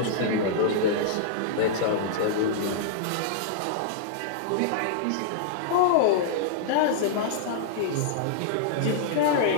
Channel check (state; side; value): different; both; correlation -0.01